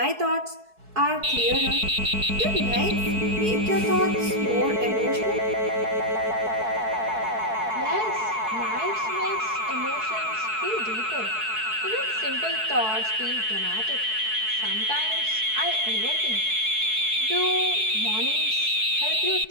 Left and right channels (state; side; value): late; left; 4.6 ms